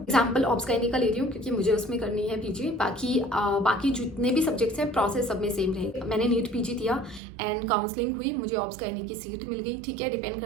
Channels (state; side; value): drops out; left; at 7.2 s